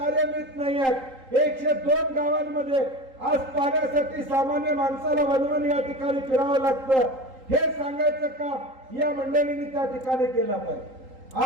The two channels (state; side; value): late; left; 3.8 ms